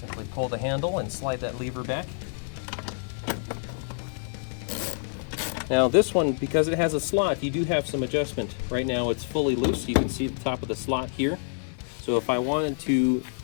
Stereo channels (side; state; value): right; silent; digital silence